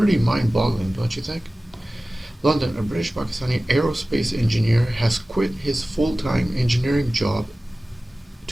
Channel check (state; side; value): normal; both; correlation 0.97